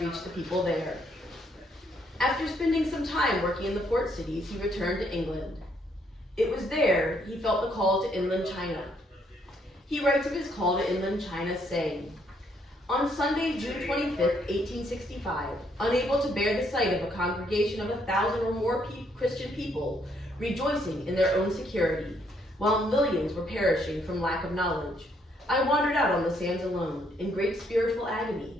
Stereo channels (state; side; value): normal; both; correlation 0.70